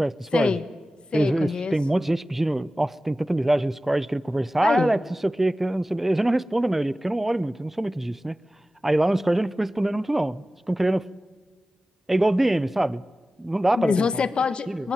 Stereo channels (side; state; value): both; normal; correlation 0.95